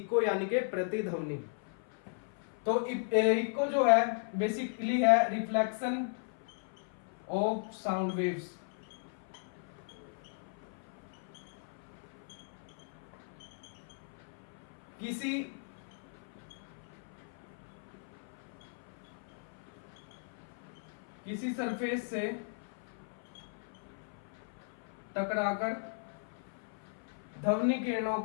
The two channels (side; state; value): right; silent; 53 dB below the other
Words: यानी कि प्रतिध्वनि। तो इको जो है बेसिकली है रिफ्लेक्शन ऑफ साउंड वेव्स। किसी सरफेस से टकराकर ध्वनि तरंगों